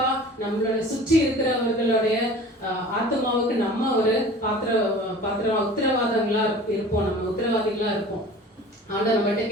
நம்மளோட சுற்றி இருக்கிறவர்களுடைய ஆத்மாவுக்கு நம்ம ஒரு உத்தரவாதங்களா இருப்போம், நம்ம உத்தரவாதிகளா இருப்போம். ஆண்டவர் நம்மகிட்ட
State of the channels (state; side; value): normal; both; correlation 0.43